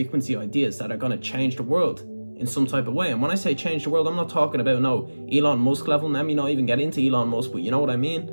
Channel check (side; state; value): both; inverted; correlation -1.00